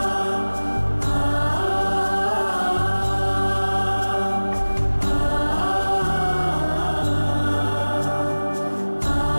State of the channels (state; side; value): inverted; both; correlation -1.00